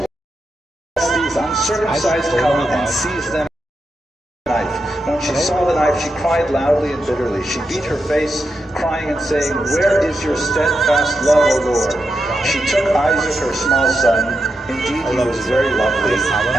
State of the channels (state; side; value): normal; both; correlation 0.86